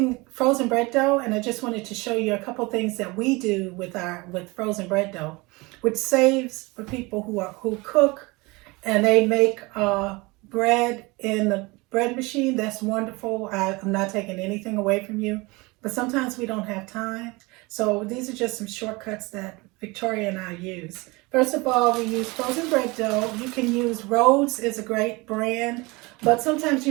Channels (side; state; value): left; quieter; 24.6 dB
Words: frozen bread dough, and I just wanted to show you a couple things that we do with frozen bread dough, which saves for people who cook and they make bread in the bread machine. That's wonderful. I'm not taking anything away from you, but sometimes we don't have time. So these are just some shortcuts that Victoria and I use. First of all, we use frozen bread dough. You can use Rhodes, is a great brand, but sometimes